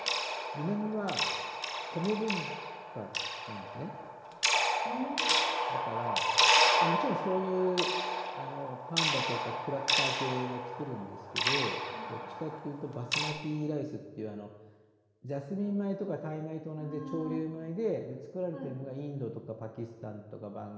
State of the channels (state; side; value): identical; both; correlation 1.00